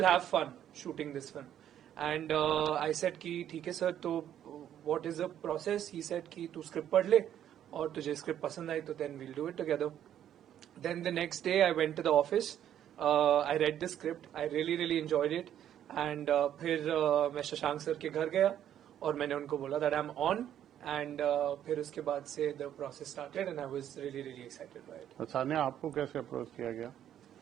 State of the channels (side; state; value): left; quieter; 10.6 dB